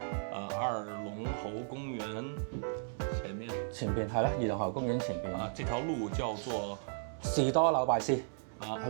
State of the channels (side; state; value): left; silent; digital silence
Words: 二龍喉公園前邊係啦，二龍喉公園前邊啊，這條路叫做士多紐拜斯啊，